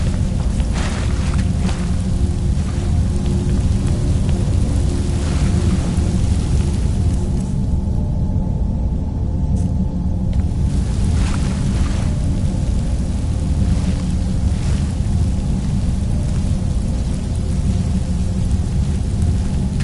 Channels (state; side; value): identical; both; correlation 1.00